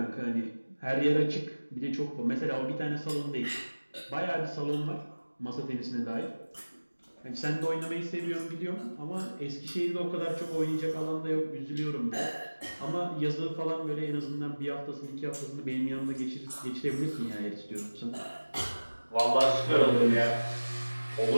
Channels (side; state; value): both; inverted; correlation -1.00